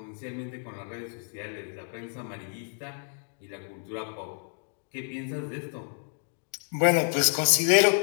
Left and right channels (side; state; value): right; silent; 58 dB below the other